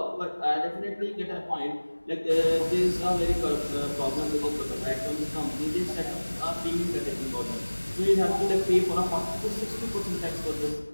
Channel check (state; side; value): inverted; both; correlation -1.00